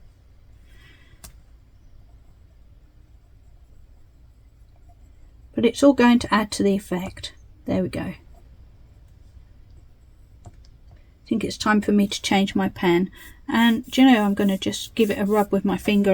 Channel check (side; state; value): both; identical; correlation 1.00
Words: But it's all going to add to the effect. There we go. I think it's time for me to change my pen. And do you know, I'm going to just give it a rub with my finger